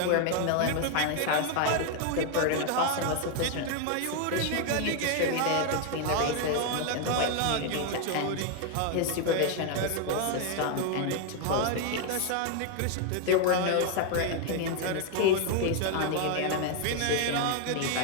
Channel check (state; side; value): different; both; correlation 0.01